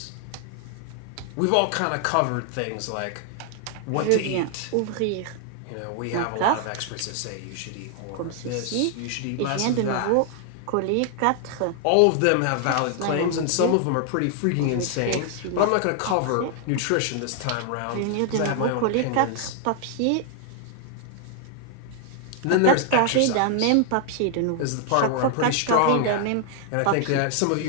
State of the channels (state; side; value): different; both; correlation 0.00